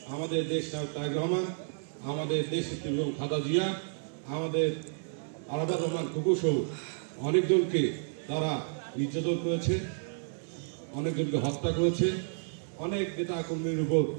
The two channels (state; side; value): silent; left; digital silence